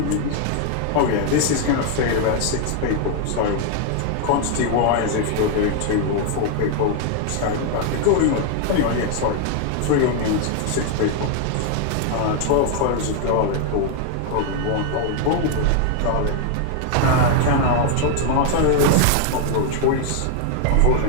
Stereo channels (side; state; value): both; different; correlation 0.00